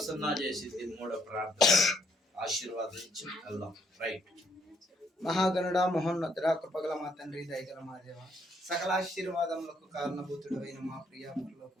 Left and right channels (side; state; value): both; normal; correlation 0.71